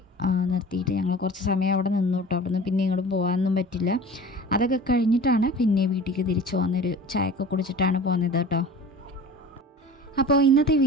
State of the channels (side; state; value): both; normal; correlation 0.40